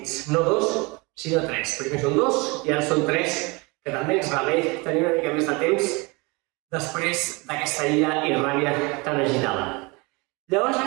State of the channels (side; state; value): left; quieter; 27.0 dB